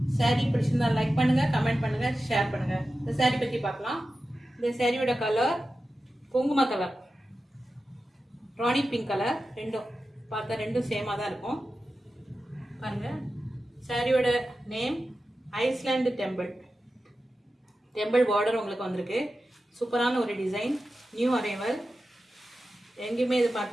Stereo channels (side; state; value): both; normal; correlation 0.93